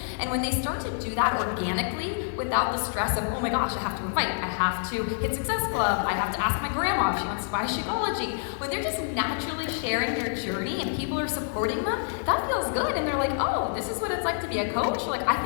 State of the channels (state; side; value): silent; right; digital silence